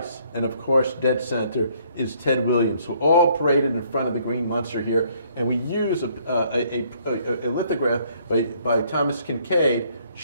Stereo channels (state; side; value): inverted; both; correlation -0.65